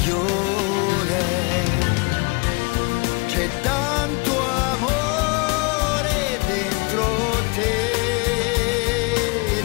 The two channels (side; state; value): right; quieter; 28.4 dB